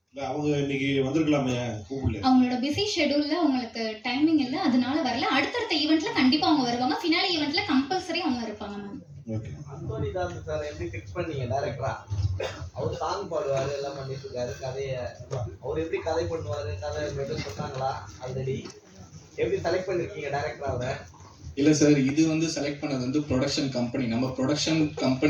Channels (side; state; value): both; identical; correlation 1.00